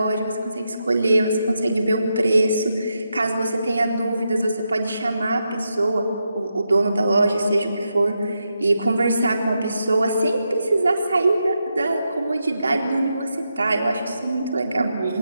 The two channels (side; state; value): both; inverted; correlation -0.85